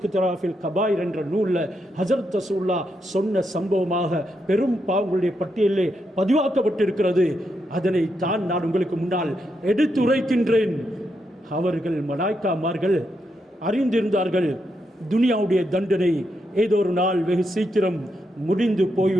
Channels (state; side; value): normal; both; correlation 0.82